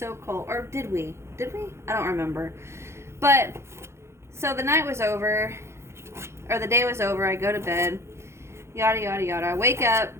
cold. Or did we? Did we? I don't remember. But, so the night was over, or the day was over. I go to bed, yada, yada, yada. I wake up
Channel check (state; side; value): late; left; 0.13 ms